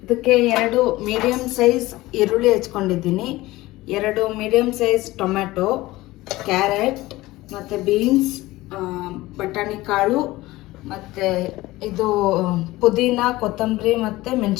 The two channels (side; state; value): right; quieter; 18.5 dB